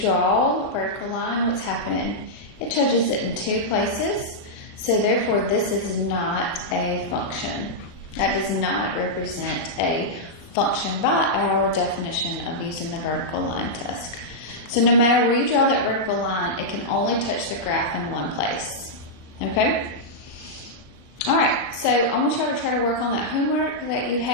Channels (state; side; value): late; right; 38 ms